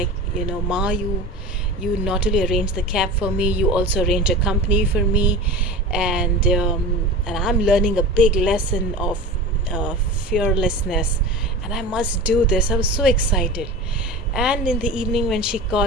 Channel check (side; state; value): both; normal; correlation 0.32